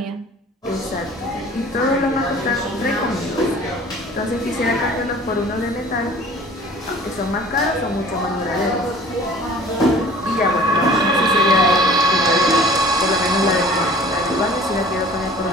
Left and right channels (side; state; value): both; normal; correlation 0.48